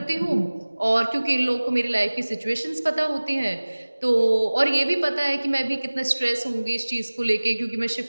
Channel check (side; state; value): both; inverted; correlation -1.00